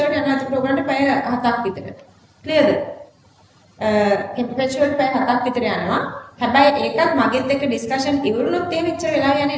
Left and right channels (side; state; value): both; identical; correlation 1.00